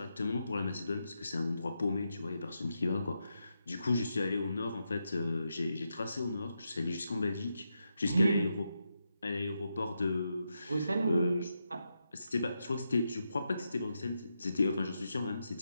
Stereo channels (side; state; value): both; inverted; correlation -0.85